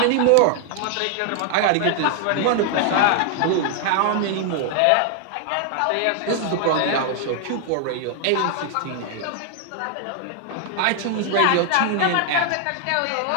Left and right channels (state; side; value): different; both; correlation 0.00